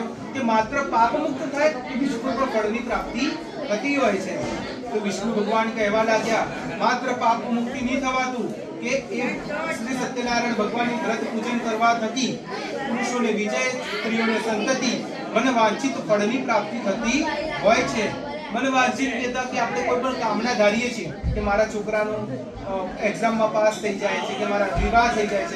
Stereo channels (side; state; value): both; identical; correlation 1.00